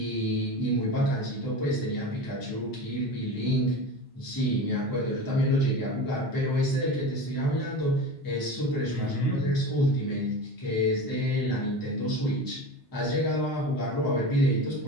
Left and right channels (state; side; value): normal; both; correlation 0.30